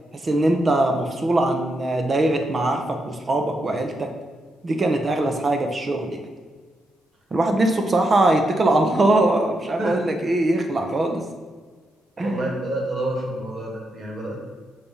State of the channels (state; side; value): normal; both; correlation 0.83